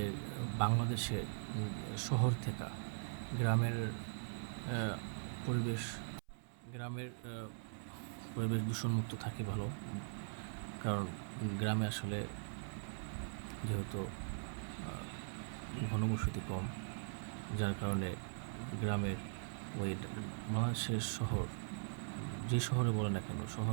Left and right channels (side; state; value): left; silent; 50 dB below the other